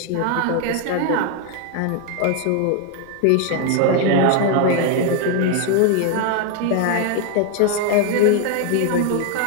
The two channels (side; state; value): both; different; correlation 0.01